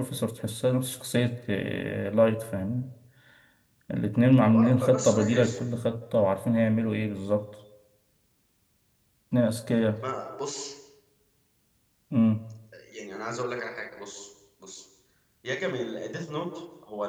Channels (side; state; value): both; identical; correlation 1.00